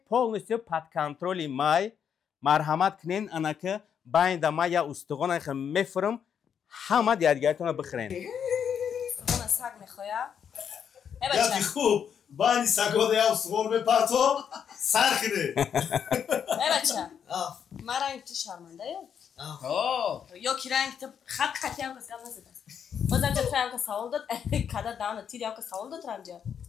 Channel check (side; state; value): right; quieter; 7.9 dB